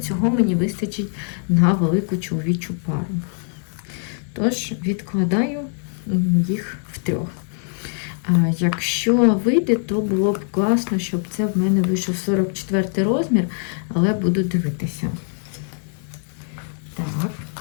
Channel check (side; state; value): right; silent; 64 dB below the other